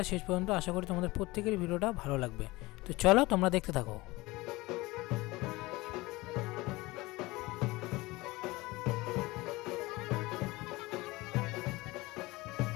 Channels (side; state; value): right; quieter; 21.2 dB